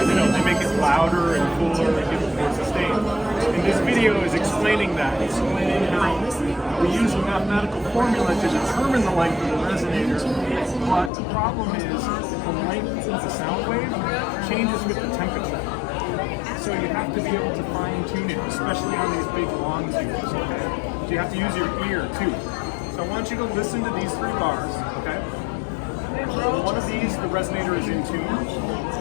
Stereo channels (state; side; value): drops out; right; at 11.1 s